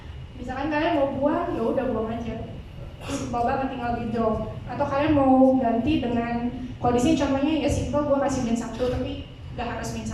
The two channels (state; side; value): identical; both; correlation 1.00